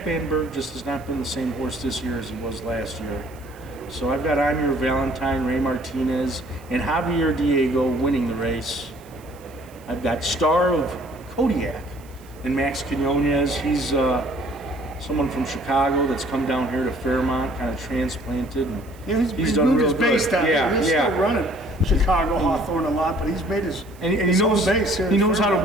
Van Berg just has not been the same horse this year as he was last year. So I've got I'm Your Valentine, Ray Martinez, and Javier Diego winning the race. I've got Star of Kodiak and Max Quinones. He's someone from Chicago that's come down here to Fairmont, kind of transplanted. And he's done moved real his base good. down here. He's still running Chicago, Hawthorne a lot, but he's made his and he knows base here. He knows how to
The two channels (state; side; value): noise; right; hiss, 26 dB below the sound